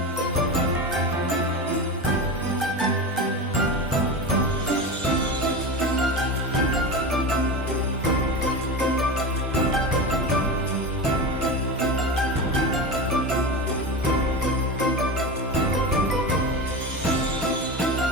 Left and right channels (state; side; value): normal; both; correlation 0.24